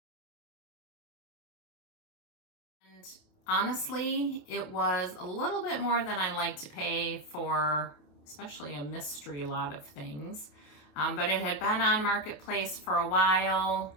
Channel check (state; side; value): late; right; 27 ms